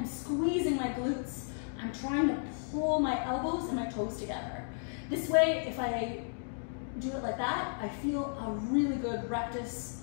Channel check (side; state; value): right; silent; digital silence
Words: squeezing my glutes. I'm trying to pull my elbows and my toes together. This way, if I do it like that, I feel a really good rectus